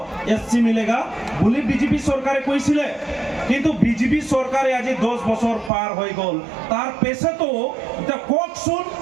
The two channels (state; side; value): drops out; left; at 5.7 s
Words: एससी मिलेगा बोली बीजेपी सरकारे কৈছিলে কিন্তু বিজেপি সরকারে আজি 10 বছর পার হয়ে গল তার পেছে তো এটা ককসুন